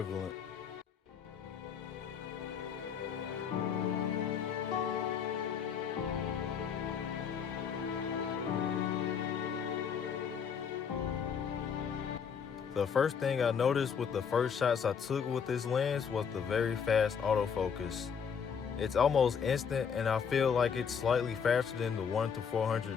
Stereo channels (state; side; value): quieter; right; 6.9 dB